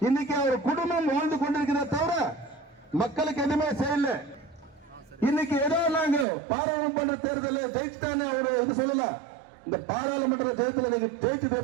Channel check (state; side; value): drops out; left; at 6.2 s